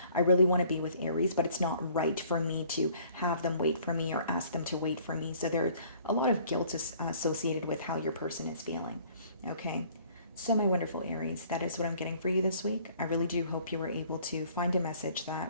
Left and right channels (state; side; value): inverted; both; correlation -0.56